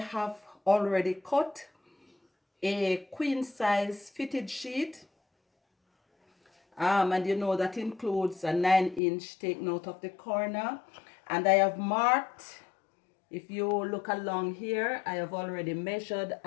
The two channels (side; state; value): right; drops out; at 9.0 s